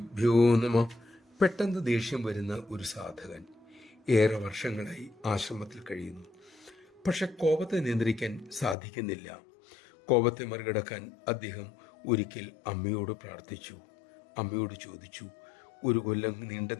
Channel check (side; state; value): right; drops out; at 8.8 s